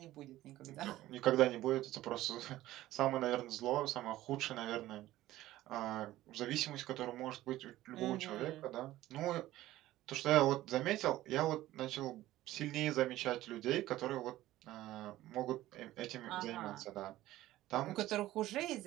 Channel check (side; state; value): left; quieter; 15.5 dB